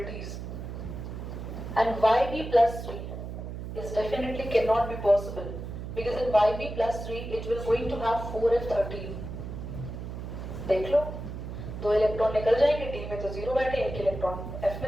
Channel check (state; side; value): noise; right; hum, 8 dB below the sound